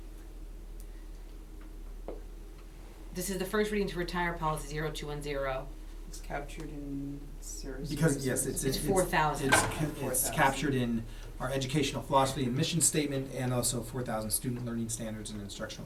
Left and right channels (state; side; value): identical; both; correlation 1.00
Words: This is the first reading to retire policy 0210. It's captured in Sarah's. Because, yes, it's 4,000. It's 4,000. captured in our educational philosophy and mission statement, and also 4,000 student learning standards and instructional